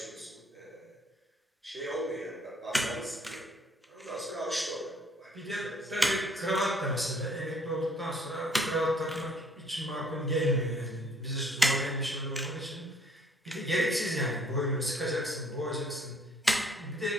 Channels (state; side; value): normal; both; correlation 0.61